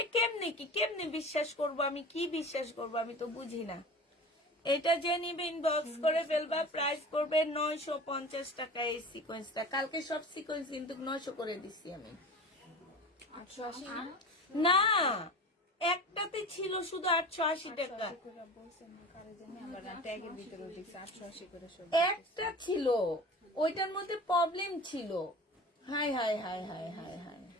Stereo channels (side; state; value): both; normal; correlation 0.35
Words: কেমনে কি, কেমনে বিশ্বাস করব আমি? কি বিশ্বাস করব আমি তো বুঝি না। এটা যে নিবে ইনবক্স করে ফেলবা। প্রাইস পড়বে 950 টাকা এই সিকোয়েন্সটা। কালকে সব সিকোয়েন্স কিন্তু 900 করে দিচ্ছি আমি। 880 না? না, একটাতে ছিল শুধু 880 টাকা। বলছেন না কারে জানি, আবার ট্যাগের ভিতরে দেখছি 880 করে সব। একটা ছিল, ওইটার মধ্যে প্রবলেম ছিল। High high high high high high,